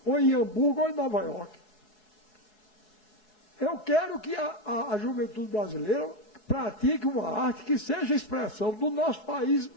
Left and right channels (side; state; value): right; late; 4.7 ms